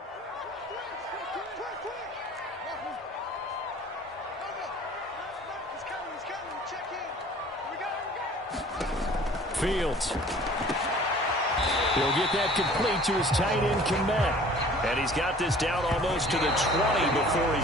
Fields. He'll get that complete to his tight end, Kmet. And he's got this down almost to the 20 before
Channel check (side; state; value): both; normal; correlation 0.49